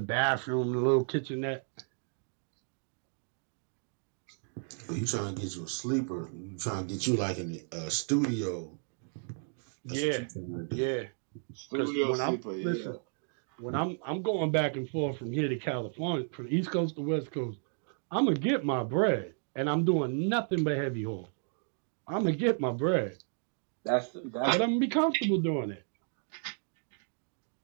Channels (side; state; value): left; silent; 56 dB below the other